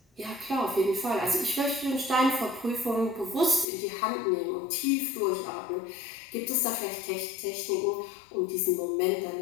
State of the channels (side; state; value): right; drops out; at 3.7 s